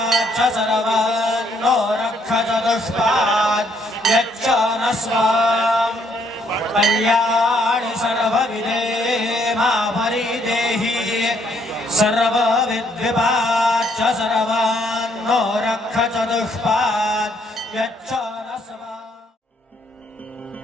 सर्वान्नो रक्ष चतुष्पाद् यच्च न स्वाम् कल्याणि सर्वविदे मा परिदेहि सर्वविद्विपाच्च सर्वान्नो रक्ष चतुष्पाद् यच्च न स्वाम्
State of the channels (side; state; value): both; normal; correlation 0.69